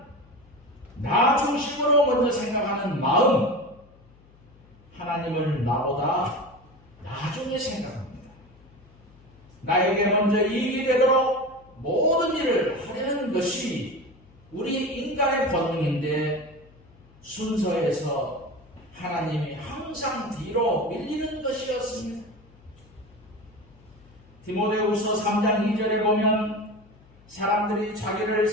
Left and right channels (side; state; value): left; noise; hum, 27 dB below the sound